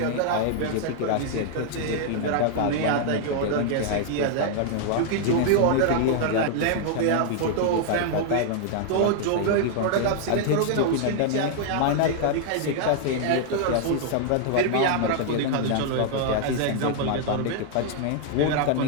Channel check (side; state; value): both; different; correlation 0.00